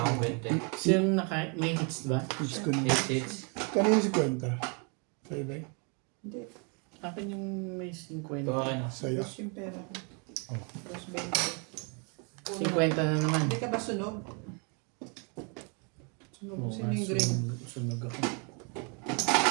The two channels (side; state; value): left; quieter; 35.9 dB